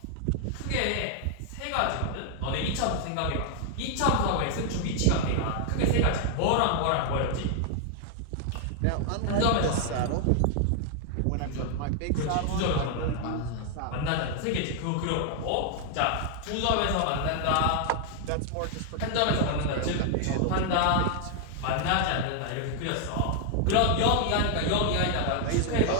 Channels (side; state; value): both; different; correlation 0.00